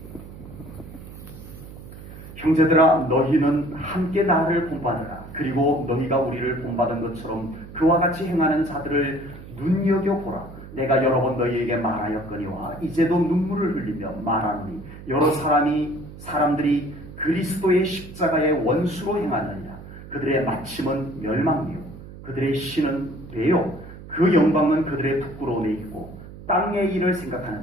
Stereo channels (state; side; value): noise; right; hum, 15 dB below the sound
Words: 형제들아, 너희는 함께 나를 본받으라. 그리고 너희가 우리를 본받은 것처럼 그와 같이 행하는 자들을 눈여겨보라. 내가 여러 번 너희에게 말하였거니와 이제도 눈물을 흘리며 말하노니 여러 사람들이 그리스도의 십자가의 원수로 행하느냐. 그들의 마침은 멸망이요 그들의 신은 배요 그 영광은 그들의 부끄러움에 있고 땅의 일을